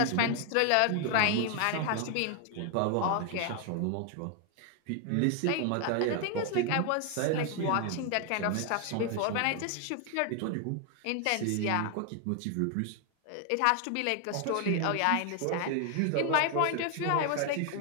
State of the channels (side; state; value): both; different; correlation 0.00